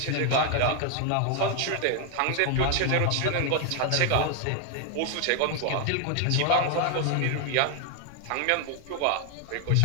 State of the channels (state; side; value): different; both; correlation 0.01